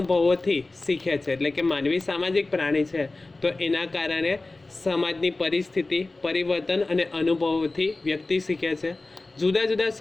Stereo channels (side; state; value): right; quieter; 3.2 dB